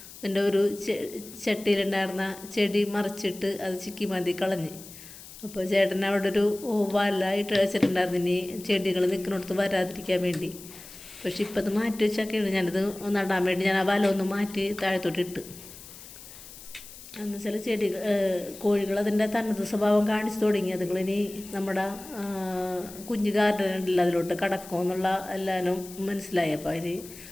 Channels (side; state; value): left; noise; hiss, 16 dB below the sound